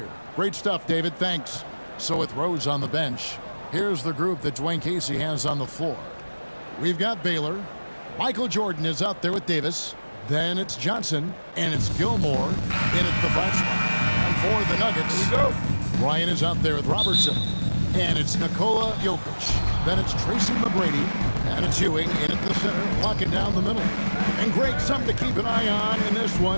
Great stuff, David. Thanks. So with Rose on the bench, here's the group that Dwayne Casey has on the floor. We've got Baylor. Michael Jordan is out there with Davis. Then it's Johnson, and it's Gilmore in at the 5 spot. And for the Nuggets, Here we go. Ryan is out there with Robertson. And it's Nikola Jokic. Then it's Tracy McGrady. And it's Ewing in at the center, locking down the middle. And Greg, something to keep an eye on in this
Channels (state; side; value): inverted; both; correlation -1.00